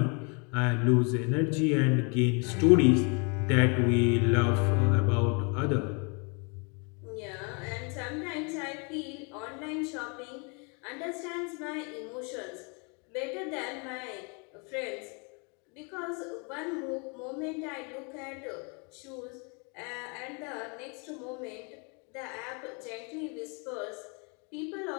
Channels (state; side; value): quieter; right; 34.2 dB